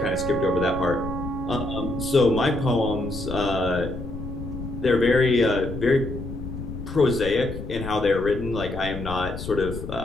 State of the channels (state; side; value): noise; left; rumble, 8 dB below the sound